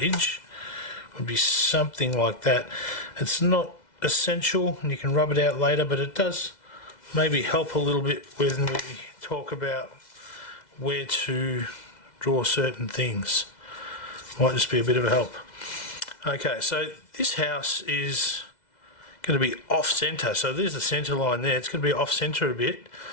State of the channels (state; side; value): late; right; 2.0 ms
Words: would be something like that. It's not essential and you can rub it out later, but it does maybe help a little bit when we talk about where to draw certain things. Might just be a bit of a help. Okay, so this house is going to be off centre, so there's the centre line there. It's going to be off centre a bit,